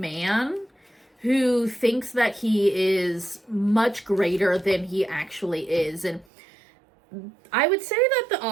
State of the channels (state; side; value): drops out; left; at 6.2 s